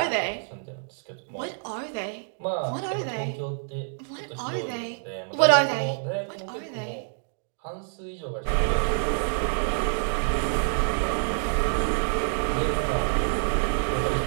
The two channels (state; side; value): silent; left; digital silence